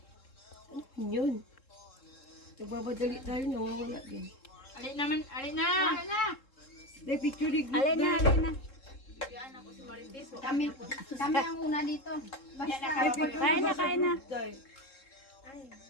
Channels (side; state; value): right; late; 3.7 ms